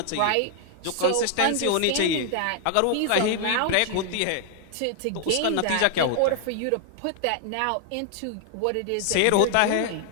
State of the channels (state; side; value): different; both; correlation 0.00